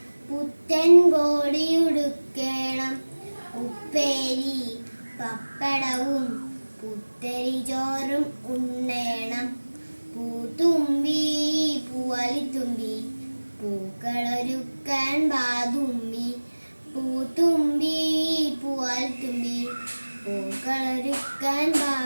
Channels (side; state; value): both; inverted; correlation -1.00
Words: പുത്തൻ കോടിയുടുക്കേണം, ഉപ്പേരി പപ്പടവും പുത്തരി ചോറും ഉണ്ണേണം. പൂത്തുമ്പി പൂവാലിത്തുമ്പി പൂക്കളൊരുക്കാൻ ബാതുമ്പി. പൂത്തുമ്പി പൂവാലിത്തുമ്പി പൂക്കളൊരുക്കാൻ